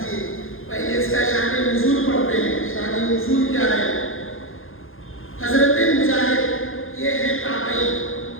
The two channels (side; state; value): right; late; 0.60 ms